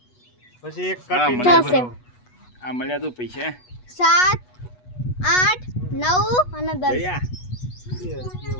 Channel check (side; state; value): right; late; 8.2 ms